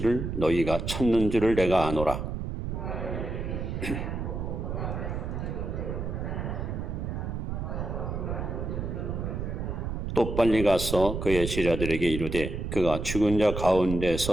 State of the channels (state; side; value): noise; right; rumble, 4 dB below the sound